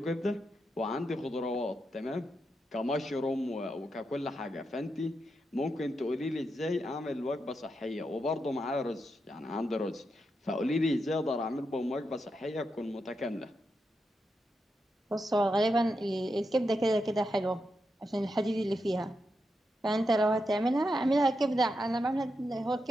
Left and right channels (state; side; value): normal; both; correlation 0.85